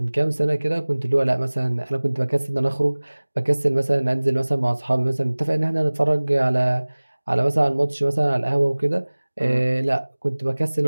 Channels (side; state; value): both; inverted; correlation -1.00